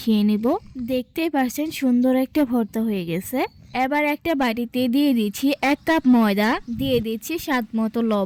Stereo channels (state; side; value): identical; both; correlation 1.00